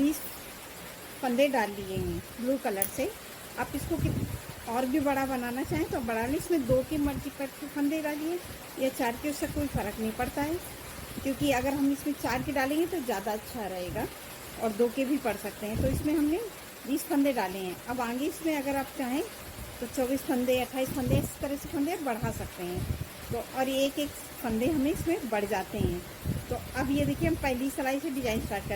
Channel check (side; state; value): both; identical; correlation 1.00